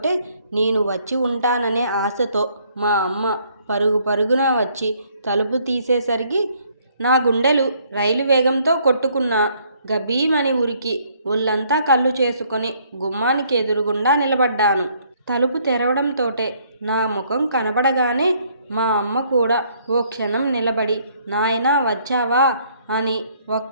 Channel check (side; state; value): both; inverted; correlation -0.65